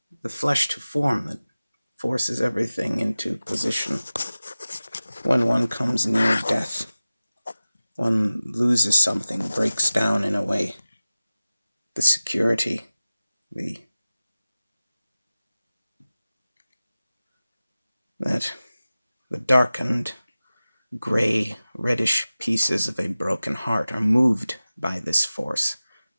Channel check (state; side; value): inverted; both; correlation -0.97